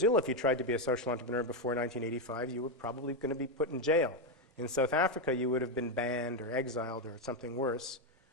if you tried to be a social entrepreneur before 1985, you were probably going to be put in jail. In South Africa, you would have been banned or exiled or something worse.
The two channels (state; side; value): normal; both; correlation 0.06